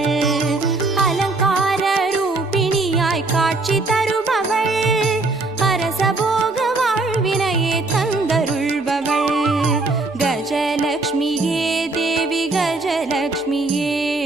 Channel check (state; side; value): quieter; left; 3.3 dB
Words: அலங்கார ரூபிணியாய் காட்சி தருபவள் அரசபோக வாழ்வினையே தந்தருள்பவள் கஜலக்ஷ்மியே தேவி கஜலக்ஷ்மியே